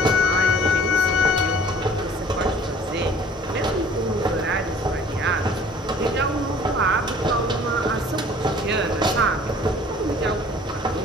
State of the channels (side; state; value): both; normal; correlation 0.51